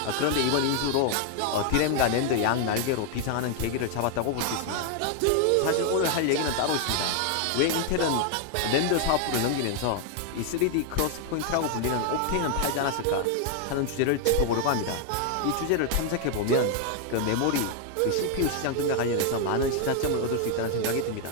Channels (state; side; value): different; both; correlation 0.00